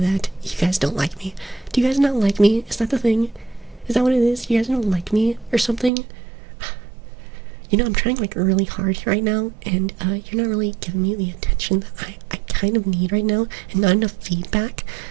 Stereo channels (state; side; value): drops out; left; at 5.9 s